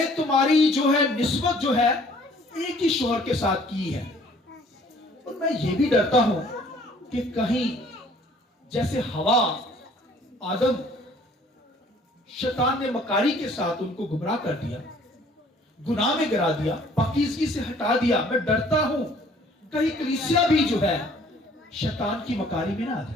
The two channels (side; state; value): both; normal; correlation 0.57